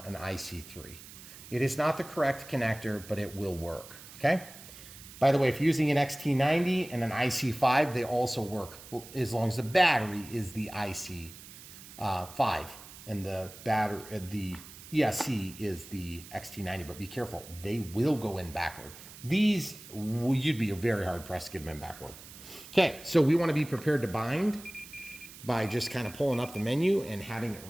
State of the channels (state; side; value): noise; right; hiss, 17 dB below the sound